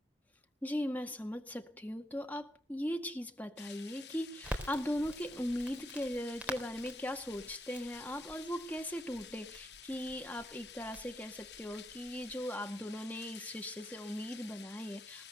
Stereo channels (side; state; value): both; normal; correlation 0.81